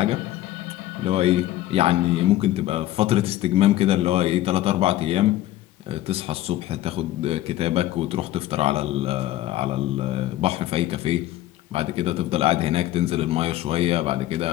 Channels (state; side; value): quieter; right; 14.7 dB